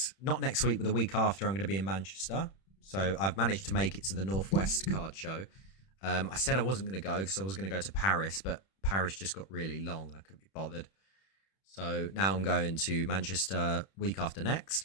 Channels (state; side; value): late; right; 31 ms